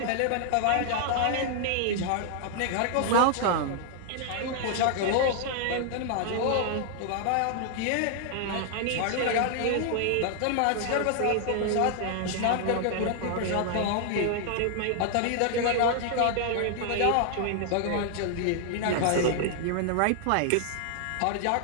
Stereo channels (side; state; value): both; different; correlation 0.00